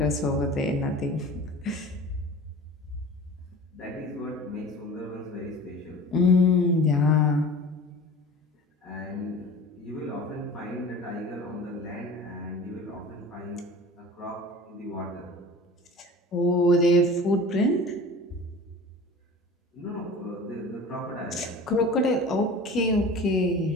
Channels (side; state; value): both; normal; correlation 0.40